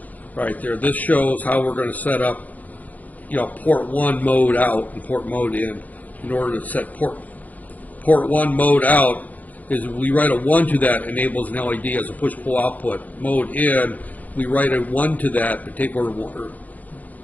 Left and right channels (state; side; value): late; right; 0.079 ms